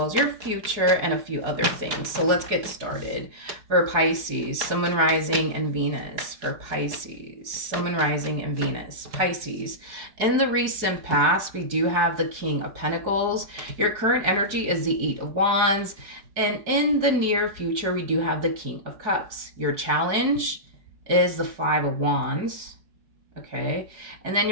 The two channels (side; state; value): left; late; 4.7 ms